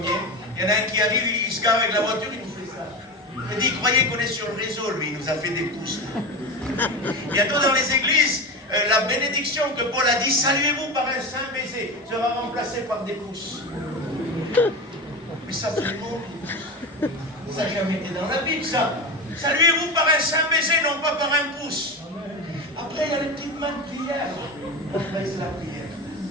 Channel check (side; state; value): both; normal; correlation 0.23